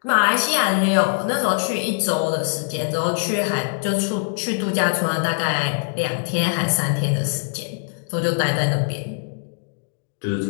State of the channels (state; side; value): silent; right; digital silence